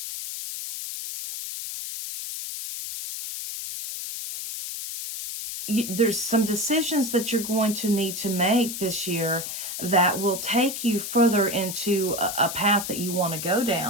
there's some decisions that you're going to need to make this year that will take you further into a path that you want to go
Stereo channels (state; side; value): noise; left; hiss, 6 dB below the sound